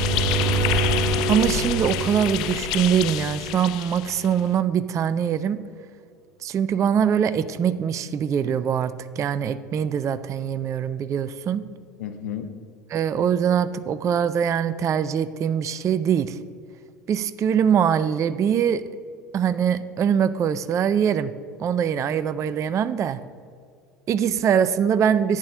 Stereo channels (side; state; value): left; quieter; 6.1 dB